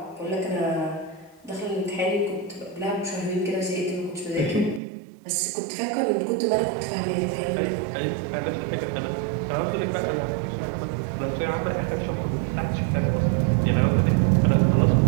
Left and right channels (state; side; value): drops out; left; at 4.8 s